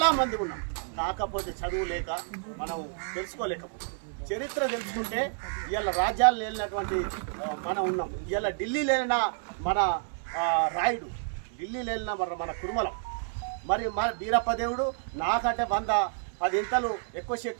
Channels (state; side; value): silent; left; 58 dB below the other